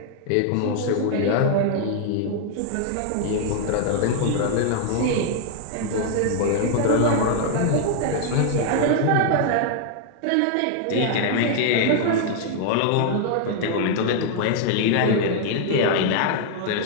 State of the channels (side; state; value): both; different; correlation 0.00